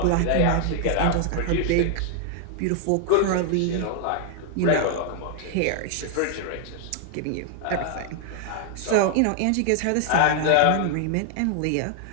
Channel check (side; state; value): both; different; correlation 0.00